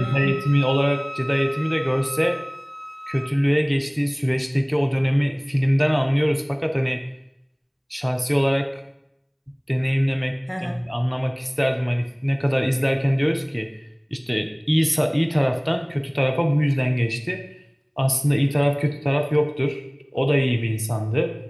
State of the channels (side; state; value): both; identical; correlation 1.00